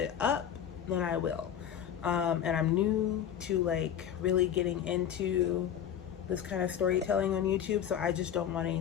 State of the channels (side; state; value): right; quieter; 9.4 dB